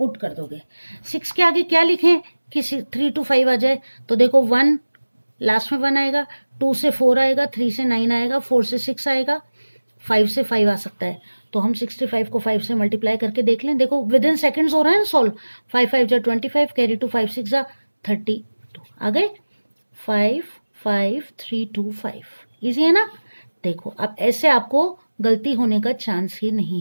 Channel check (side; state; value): both; inverted; correlation -1.00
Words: कर दोगे। 6 के आगे क्या लिखें कि 3 to 5 आ जाए, तो देखो 1 लास्ट में 1 आएगा, 2 से 4 आएगा, 3 से 9 आएगा, 4 से 6 आएगा, 5 से 5 आ सकता है। तो हम 65 को 5 से मल्टीप्लाई करके देख लें, देखो विद इन सेकेंड्स हो रहा है ना सॉल्व। 5 5 जा 25, कैरी टू 5 6 जा 32 आ गए, 5 5 3 2 5। इजी है ना। देखो अब ऐसे आपको गलती होने का चांस ही नहीं